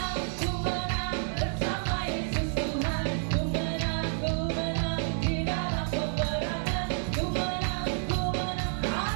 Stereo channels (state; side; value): silent; left; digital silence